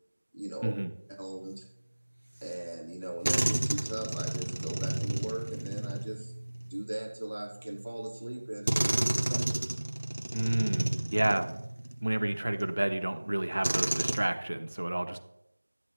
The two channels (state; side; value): inverted; both; correlation -1.00